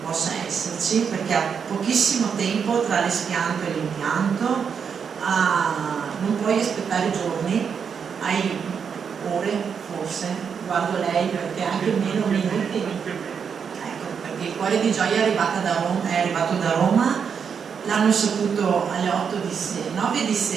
possa esserci perché ha pochissimo tempo tra l'espianto e l'impianto, non puoi aspettare giorni, hai ore forse, guardo lei perché anche meno minuti, ecco, perché il cuore di Gioia è arrivato da Roma, l'hanno saputo alle 9 di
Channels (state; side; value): quieter; left; 6.7 dB